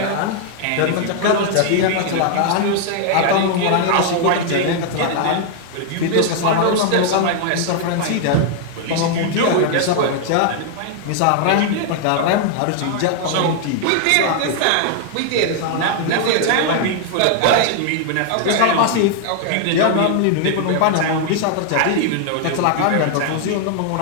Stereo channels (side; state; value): both; different; correlation 0.00